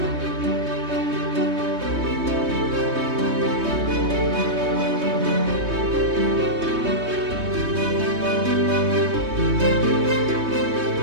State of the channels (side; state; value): left; late; 3.2 ms